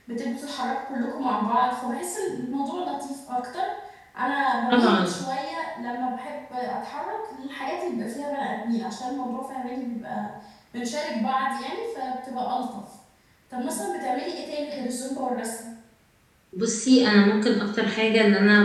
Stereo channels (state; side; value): identical; both; correlation 1.00